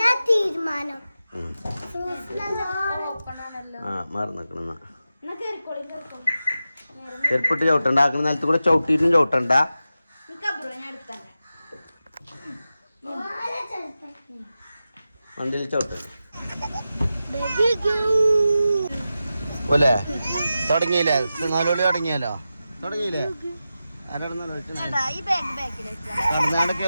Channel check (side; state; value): both; inverted; correlation -0.92